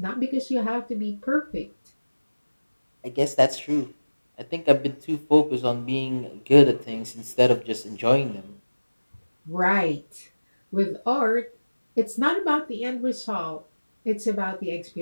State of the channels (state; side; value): inverted; both; correlation -1.00